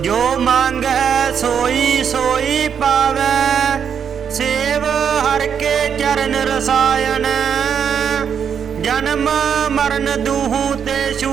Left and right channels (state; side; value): quieter; left; 7.6 dB